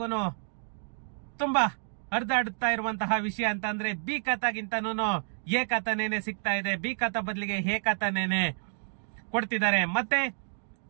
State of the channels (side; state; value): left; silent; digital silence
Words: ತುಂಬಾ ಹರಿದಾಡುತ್ತಾ ಇರುವಂತಹ ವಿಷಯ ಅಂತ ಅಂದ್ರೆ ಬಿ ಖಾತಾಗಿಂತನೂ ಎ ಖಾತಾನೇನೆ ಸಿಗ್ತಾ ಇದೆ. ಬಿ ಖಾತಾ ಬದಲಿಗೆ ಎ ಖಾತಾನೇನೆ ಕೊಡ್ತಿದ್ದಾರೆ. ಮತ್ತೆ